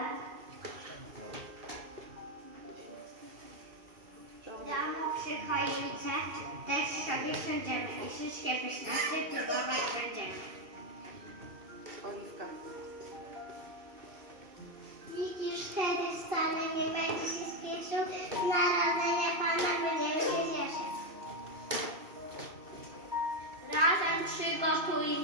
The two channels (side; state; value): left; late; 2.6 ms